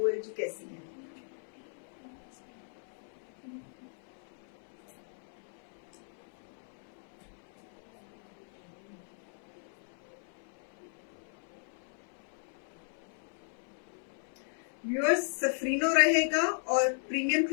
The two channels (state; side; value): silent; right; 54 dB below the other